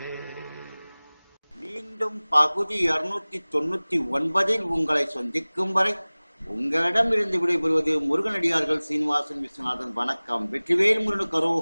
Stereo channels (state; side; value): inverted; both; correlation -1.00